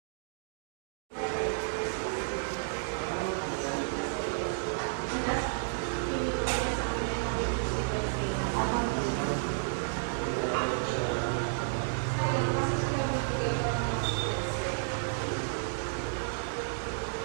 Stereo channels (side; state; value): left; silent; digital silence